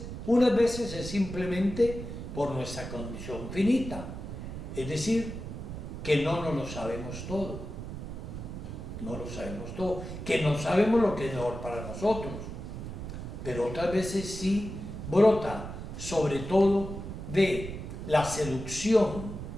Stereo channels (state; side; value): noise; right; rumble, 8 dB below the sound